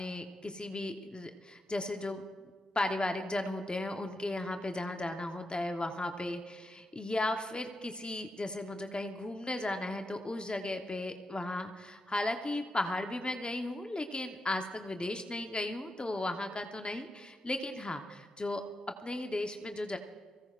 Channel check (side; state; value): both; normal; correlation 0.86